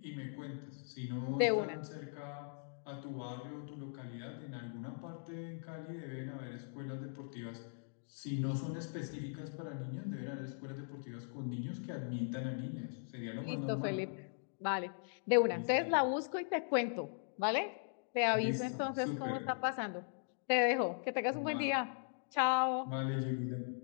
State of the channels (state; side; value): silent; right; digital silence